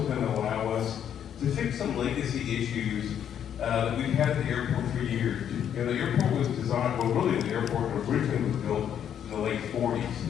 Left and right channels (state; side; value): quieter; right; 9.3 dB